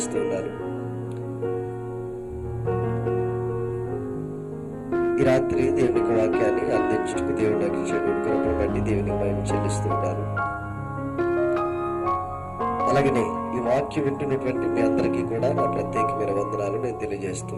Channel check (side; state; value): both; identical; correlation 1.00